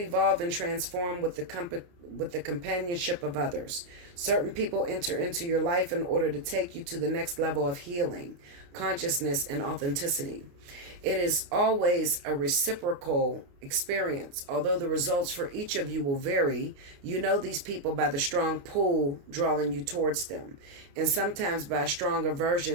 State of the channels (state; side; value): late; left; 29 ms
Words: and transform with the companionship of others. Certain people enter into your life in order to take you to the next level of healing, consciousness, and authenticity. It is always a reciprocal experience. Although the results for each of you will vary, you know these people by the strong pull drawing you towards them, and sometimes by a strong